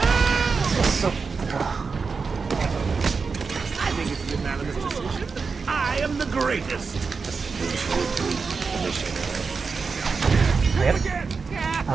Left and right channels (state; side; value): quieter; left; 4.9 dB